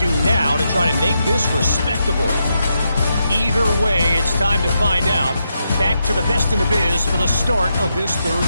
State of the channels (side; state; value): both; inverted; correlation -0.83